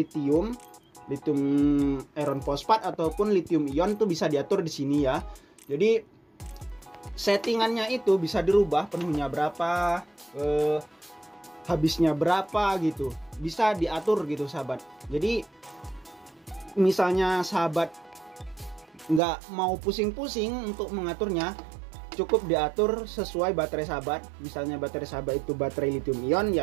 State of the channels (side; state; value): left; drops out; at 19.2 s